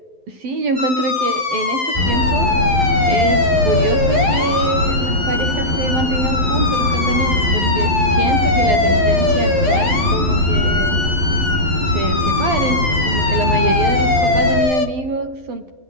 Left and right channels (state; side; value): late; left; 12 ms